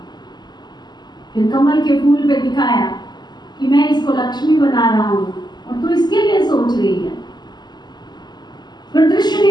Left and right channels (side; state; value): right; late; 0.21 ms